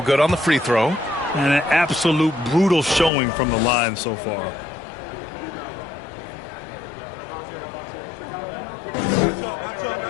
good on the free throw. And an absolute brutal showing from the line so far.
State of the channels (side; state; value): right; drops out; at 3.1 s